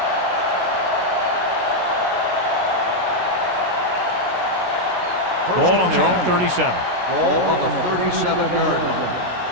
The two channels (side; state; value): left; late; 16 ms